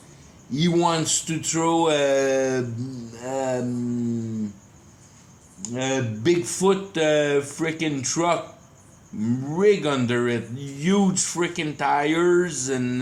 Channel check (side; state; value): both; identical; correlation 1.00